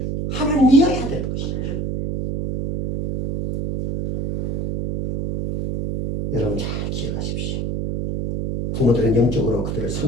하나님이어야 되는 것이죠. 여러분 잘 기억하십시오. 부모들은 영적으로 그들을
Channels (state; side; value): noise; right; hum, 2 dB below the sound